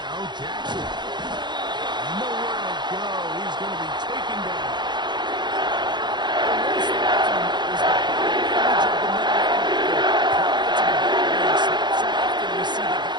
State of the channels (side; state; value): left; late; 0.21 ms